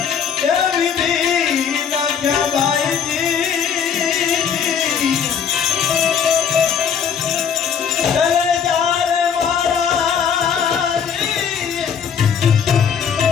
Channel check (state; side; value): quieter; right; 7.4 dB